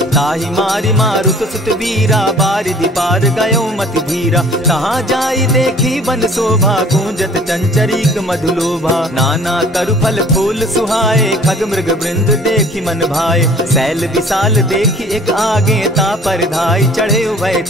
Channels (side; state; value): both; normal; correlation 0.51